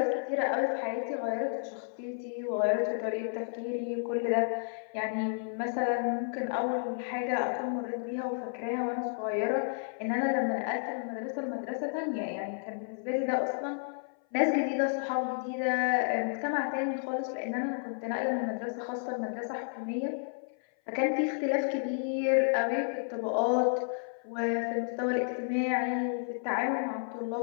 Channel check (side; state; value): right; silent; 57 dB below the other